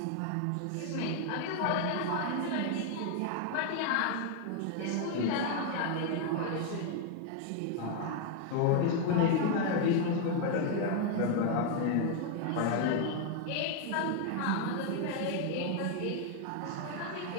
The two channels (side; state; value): both; different; correlation 0.00